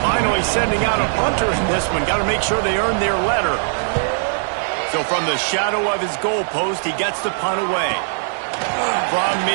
Finally sending out a punter in this one. Got to make sure they earn their letter. So from the shadow of his goalpost, he gets the punt away. From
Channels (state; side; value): silent; left; digital silence